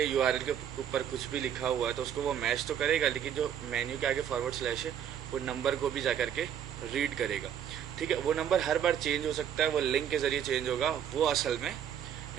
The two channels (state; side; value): quieter; left; 9.3 dB